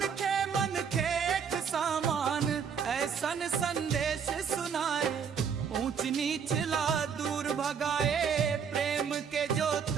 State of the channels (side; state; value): left; quieter; 6.9 dB